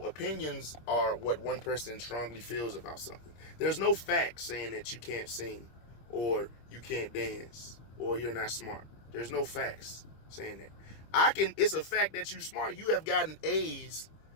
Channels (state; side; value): late; right; 26 ms